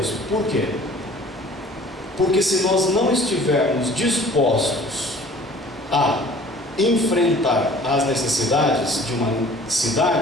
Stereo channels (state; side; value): normal; both; correlation 0.49